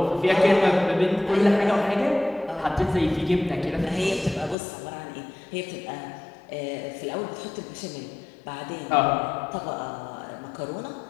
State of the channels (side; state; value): right; drops out; at 4.5 s